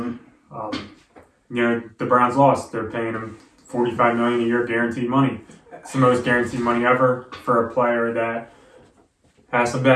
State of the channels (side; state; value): both; identical; correlation 1.00